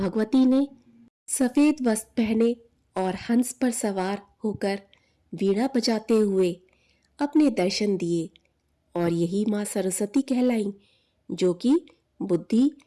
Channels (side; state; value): both; identical; correlation 1.00